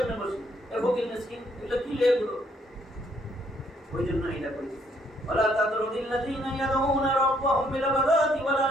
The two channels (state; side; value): normal; both; correlation 0.69